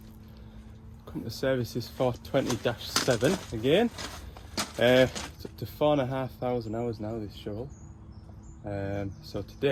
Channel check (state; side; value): identical; both; correlation 1.00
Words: to services 420-7 again. It's up to 4,500 hours now, this shovel. So